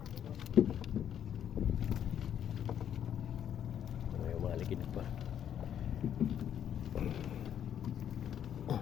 Ay, umalikid pa.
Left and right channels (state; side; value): quieter; right; 9.5 dB